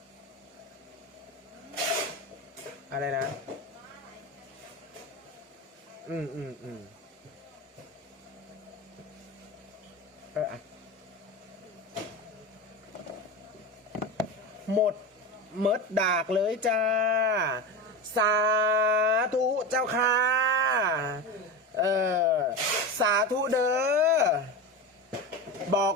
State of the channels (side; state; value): both; normal; correlation 0.23